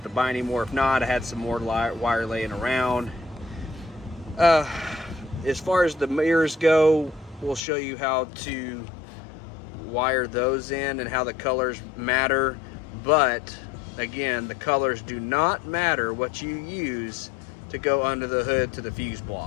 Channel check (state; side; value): drops out; right; at 7.6 s